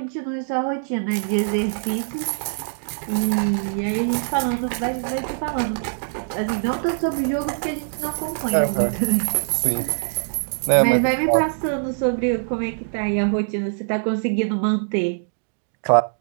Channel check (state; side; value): silent; left; digital silence